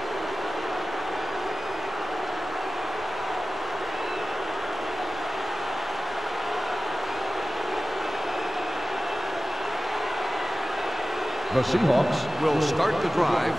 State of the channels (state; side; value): normal; both; correlation 0.96